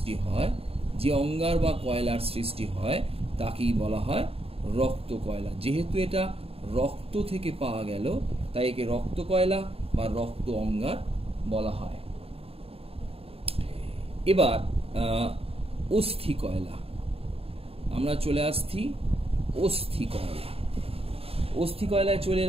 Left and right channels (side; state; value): left; late; 0.28 ms